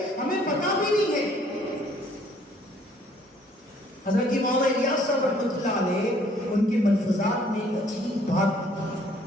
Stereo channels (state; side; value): normal; both; correlation 0.61